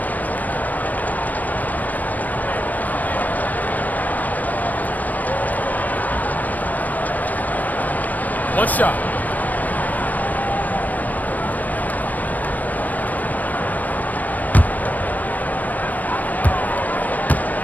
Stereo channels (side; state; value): right; late; 0.081 ms